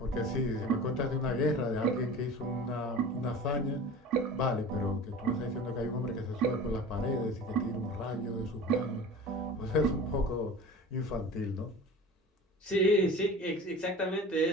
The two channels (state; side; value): normal; both; correlation 0.37